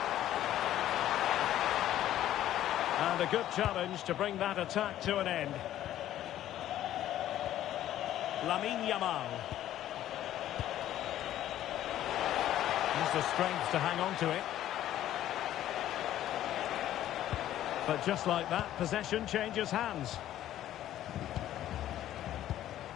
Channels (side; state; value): right; quieter; 12.6 dB